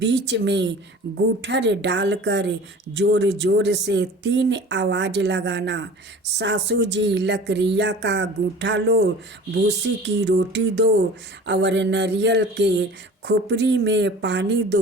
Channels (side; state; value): both; normal; correlation 0.42